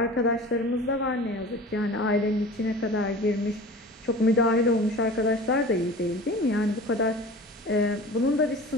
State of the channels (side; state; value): both; normal; correlation 0.39